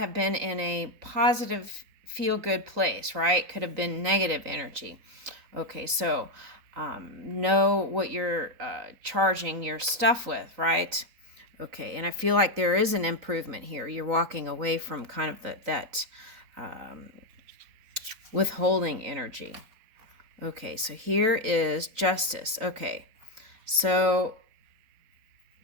been in a positive, feel-good place, right? Could have been negative energy. Okay, so know what you're charging your stuff with, right? Okay, and I feel like there is an improvement here. You're walking away from kind of that withholding energy. Okay, so here is justice. Okay, so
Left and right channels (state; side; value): late; left; 3.9 ms